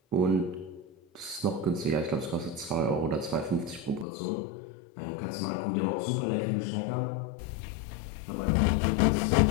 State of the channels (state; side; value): drops out; right; at 4.0 s